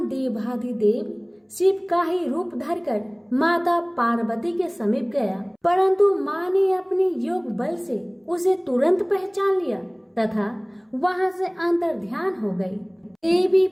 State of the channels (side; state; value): both; identical; correlation 1.00